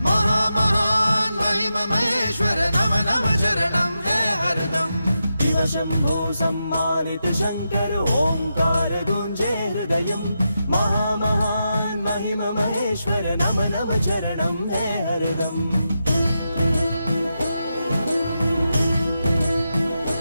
महामहान महिम महेश्वर नम नम चरणं है हरदम। शिव शंभु सम्मानित शंकर ओंकार गूंजे हृदयं महामहान महिम महेश्वर नम नम चरणं है हरदम।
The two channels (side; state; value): both; inverted; correlation -0.87